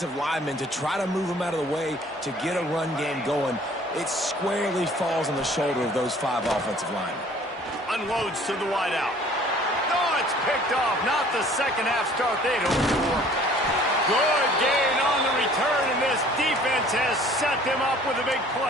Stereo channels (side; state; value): both; normal; correlation 0.53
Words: linemen, to try to move them out of the way, to get a run game going, it squarely falls on the shoulder of those 5 offensive linemen. Unloads to the wideout. Oh, it's picked off. Not the second half start they'd hoped for. Good gain on the return, and this defense has set them up with a big